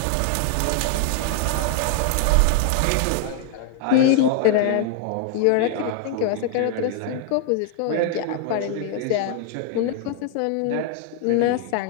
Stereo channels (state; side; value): different; both; correlation 0.00